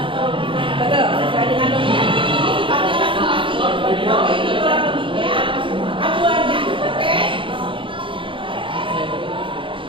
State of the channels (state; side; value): late; left; 0.25 ms